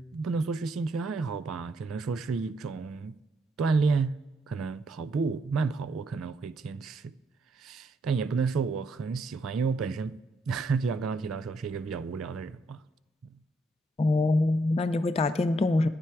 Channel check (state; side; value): normal; both; correlation 0.75